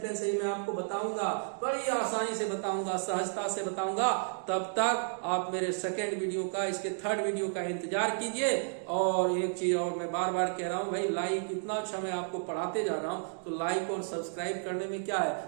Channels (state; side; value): silent; left; digital silence